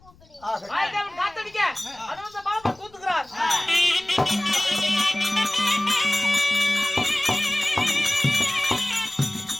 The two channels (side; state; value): left; noise; rumble, 28 dB below the sound